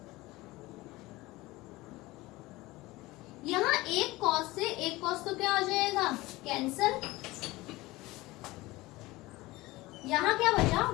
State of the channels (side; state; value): right; quieter; 20.0 dB